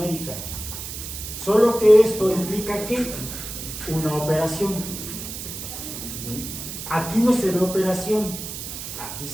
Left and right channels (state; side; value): noise; right; hiss, 8 dB below the sound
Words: Solo que esto implica que una operación. Aquí no se ve operación, aquí